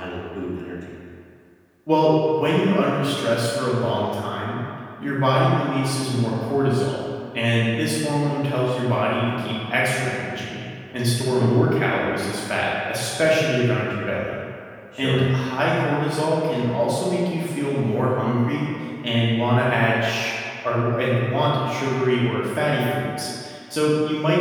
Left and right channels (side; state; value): both; identical; correlation 1.00